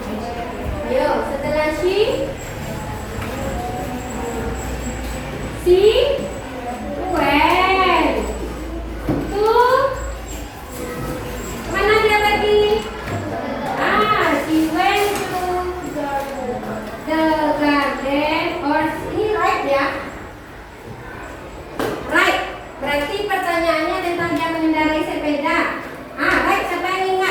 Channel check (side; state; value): both; identical; correlation 1.00